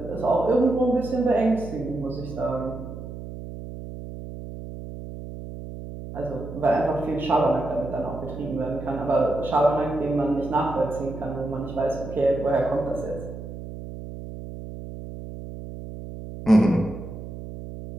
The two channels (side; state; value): right; noise; hum, 10 dB below the sound